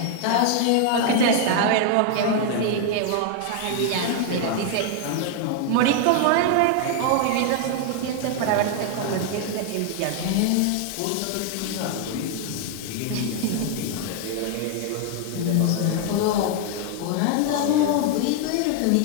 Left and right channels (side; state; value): both; different; correlation 0.00